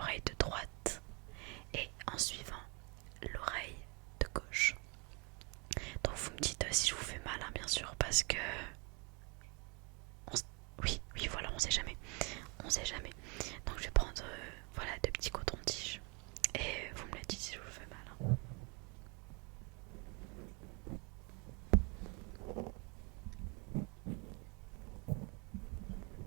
de droite et en suivant l'oreille de gauche. Donc vous me dites si je vous fais mal, hein, bien sûr, parce que... Oui, oui, voilà, on sait jamais. On sait jamais. Donc je vais prendre voilà, deux petits cotons-tiges et vous me le dites si je vous fais mal, hein.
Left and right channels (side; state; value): left; quieter; 31.6 dB